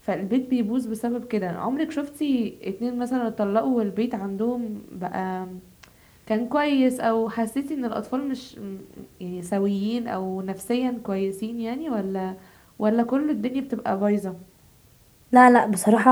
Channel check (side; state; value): both; identical; correlation 1.00